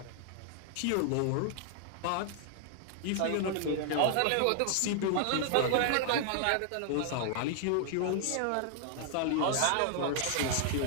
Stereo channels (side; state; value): both; different; correlation 0.00